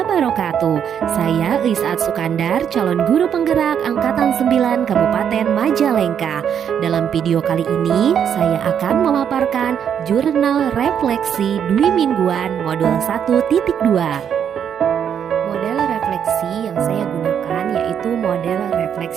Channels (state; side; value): quieter; left; 8.4 dB